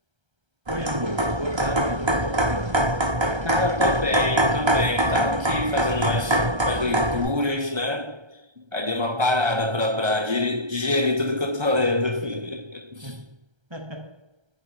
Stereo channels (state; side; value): late; left; 1.3 ms